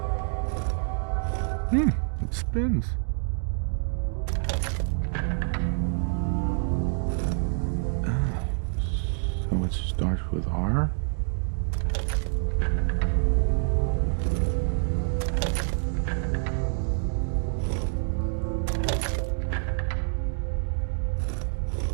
It spins. So it starts with R?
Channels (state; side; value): silent; left; digital silence